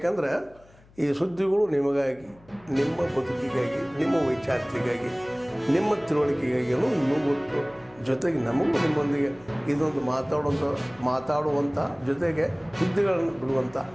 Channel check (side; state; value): left; noise; hum, 27 dB below the sound